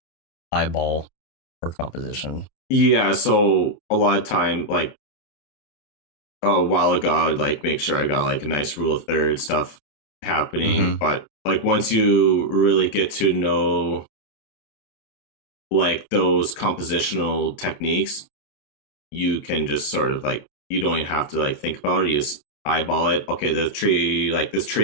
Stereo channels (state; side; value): late; right; 28 ms